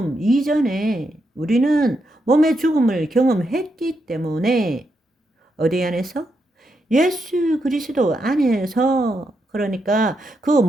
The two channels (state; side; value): normal; both; correlation 0.82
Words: 이전에 우리는 몸의 죽음을 경험했기 때문에 어디 안에서? 예수 그리스도 안에서 그러니까 그